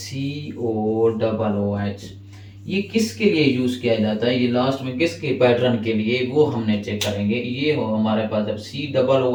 ये किसके लिए यूज किया जाता है, ये लास्ट में किसके पैटर्न के लिए, वो हमने चेक करेंगे। ये हो हमारे पास जब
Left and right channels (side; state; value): both; identical; correlation 1.00